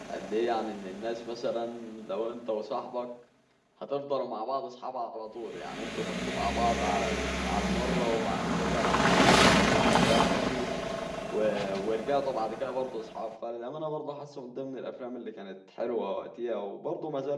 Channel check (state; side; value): identical; both; correlation 1.00